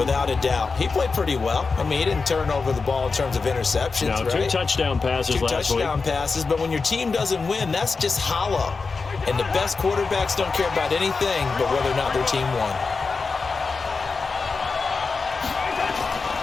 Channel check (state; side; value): quieter; right; 4.5 dB